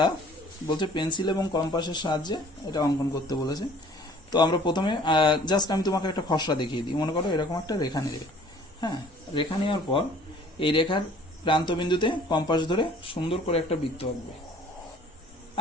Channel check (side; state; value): both; normal; correlation 0.53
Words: বলছে পেন্সিল এবং কম্পাসের সাহায্যে এটা অঙ্কন করতে বলেছে। তো আমরা প্রথমে জাস্ট আমি তোমাকে একটা খসড়া দেখিয়ে দিই। মনে করো এরকম একটা রেখা নেবে, হ্যাঁ, রেখা নেওয়ার পর এই রেখার প্রান্তবিন্দুতে কম্পাস ধরে সুন্দর করে একটা বৃত্ত আঁকবে।